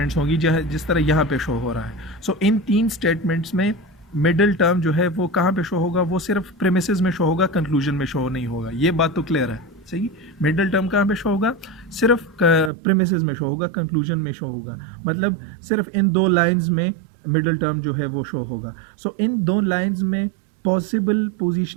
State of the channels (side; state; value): left; drops out; at 12.7 s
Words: होंगी जिस तरह यहाँ पे शो हो रहा है। सो इन 3 स्टेटमेंट्स में मिडल टर्म जो है वो कहाँ पे शो होगा? वो सिर्फ प्रेमिसेस में शो होगा, कंक्लूजन में शो नहीं होगा। ये बात तो क्लियर है। सही, मिडल टर्म कहाँ पे शो होगा? सिर्फ प्रेमिसेस में शो होगा, कंक्लूजन में शो होगा, मतलब सिर्फ इन 2 लाइन्स में मिडल टर्म जो है वो शो होगा। सो इन 2 लाइन्स में पॉसिबल